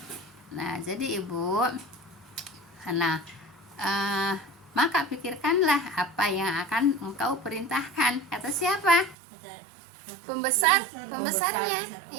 Nah, jadi Ibu, maka pikirkanlah apa yang akan engkau perintahkan, kata siapa? Pembesarnya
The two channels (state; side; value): drops out; left; at 9.2 s